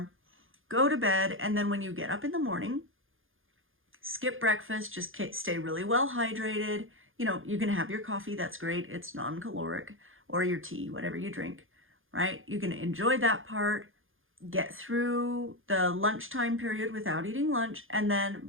Go to bed, and then when you get up in the morning, skip breakfast, just stay really well hydrated. You know, you can have your coffee, that's great, it's non-caloric, or your tea, whatever you drink, right? You can enjoy that part, get through the lunchtime period without eating lunch, and then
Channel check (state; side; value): late; left; 0.59 ms